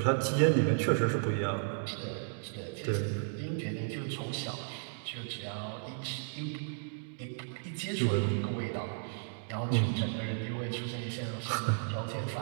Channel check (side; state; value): left; silent; digital silence